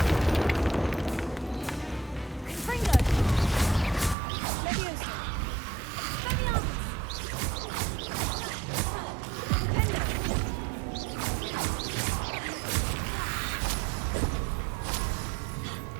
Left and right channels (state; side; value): drops out; left; at 4.2 s